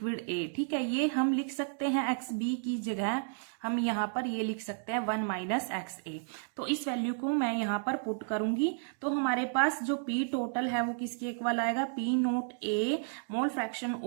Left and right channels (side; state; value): left; silent; digital silence